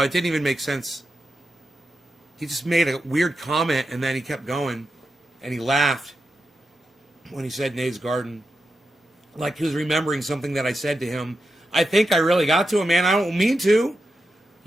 it didn't even make sense. He just made a weird comment, and then he kept going, and he laughed when he said Nate's Garden. Like he was remembering something that I said to him. I think I really got to him, man. I don't mean to.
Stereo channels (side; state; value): both; normal; correlation 0.88